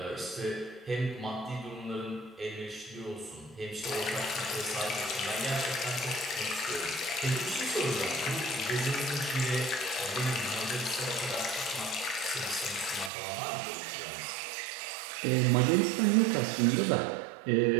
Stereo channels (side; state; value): left; drops out; at 13.1 s